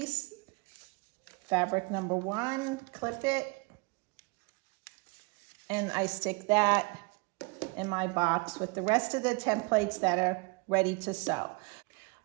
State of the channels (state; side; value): quieter; left; 28.3 dB